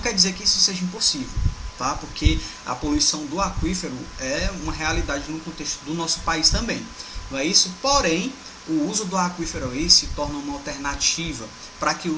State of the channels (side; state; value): both; identical; correlation 1.00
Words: quer dizer que isso seja impossível. Tá? Porque a poluição do aquífero é uma realidade no contexto do nosso país também, não é isso? Porém, o uso do aquífero aí se torna uma alternativa para que o